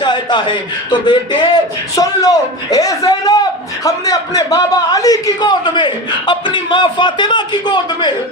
ہے تو بیٹے سن لو اے زینب ہم نے اپنے بابا علی کی گود میں، اپنی ماں فاطمہ کی گود میں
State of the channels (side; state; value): both; normal; correlation 0.26